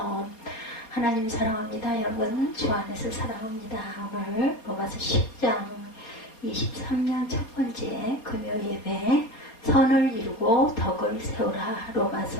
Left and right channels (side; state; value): right; late; 4.3 ms